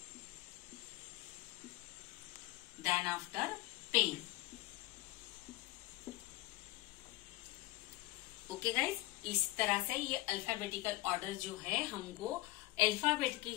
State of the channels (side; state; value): right; quieter; 19.1 dB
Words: Then after pen. Okay guys, इस तरह से ये alphabetical order जो है हमको alphabet के